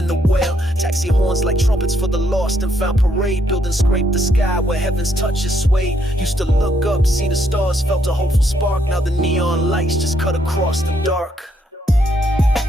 the well. Taxi horns like trumpets for the lost and found. Parade building scrape the sky where heaven's touch is swayed. Used to look up, see the stars, felt a hopeful spark. Now the neon lights just cut across the dark.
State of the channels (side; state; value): both; normal; correlation 0.73